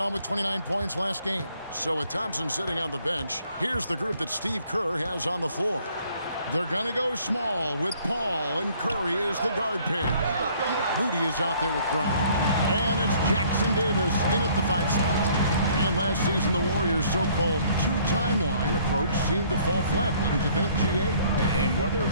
him with 29 points last game. So with Thompson sitting on the bench, here's the group that Steve Kerr has on the floor. They're going to go small with Paul, and Curry is the guard pair. Moody is out there with Brown. And it's Jackson Davis in at the 5 spot. And last season, the Warriors' so-called two-timeline approach seemed to fall flat, didn't you think, G.A.? And whether it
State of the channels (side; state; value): both; inverted; correlation -0.60